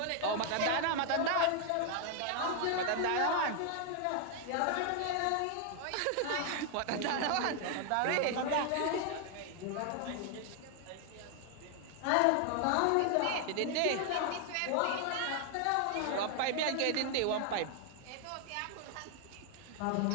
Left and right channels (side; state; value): both; different; correlation 0.00